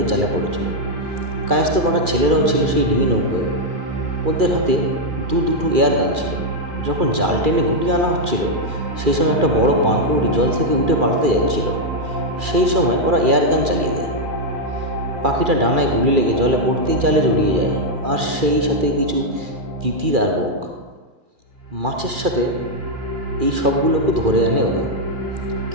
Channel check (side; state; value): left; late; 2.4 ms